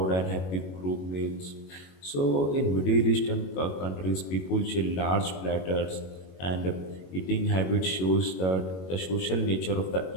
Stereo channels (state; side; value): late; right; 21 ms